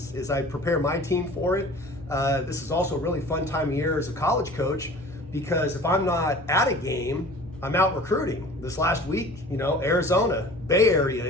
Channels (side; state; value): both; normal; correlation 0.44